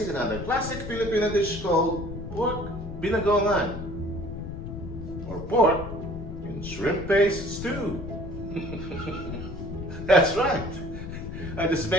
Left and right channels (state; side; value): noise; left; rumble, 9 dB below the sound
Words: another classic Filipino dish called pork binagoongan, or pork in shrimp paste stew. That's right. I just